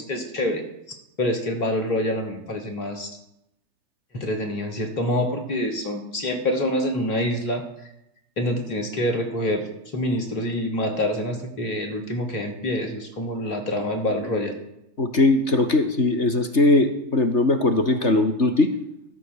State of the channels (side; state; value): right; late; 3.2 ms